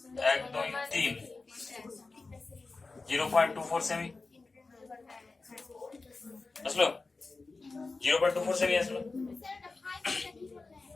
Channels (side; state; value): right; quieter; 3.8 dB